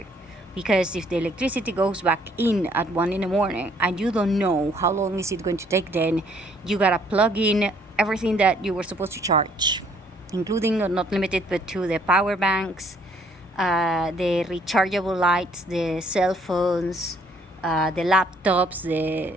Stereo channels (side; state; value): both; normal; correlation 0.64